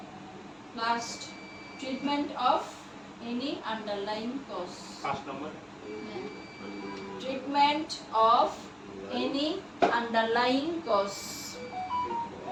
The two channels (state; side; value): identical; both; correlation 1.00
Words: Last, treatment of any underlying cause. 5 number Treatment of any underlying cause.